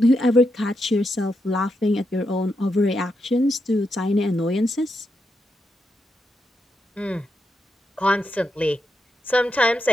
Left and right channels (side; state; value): both; normal; correlation 0.83